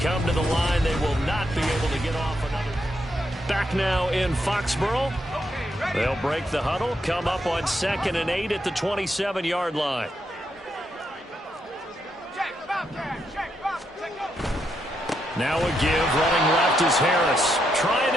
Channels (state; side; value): normal; both; correlation 0.80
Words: to the line, they will not be able to get off another. Back now in Foxborough. They'll break the huddle, come up on 2nd and 8 at the 27-yard line. Now a give, running left is Harris. Trying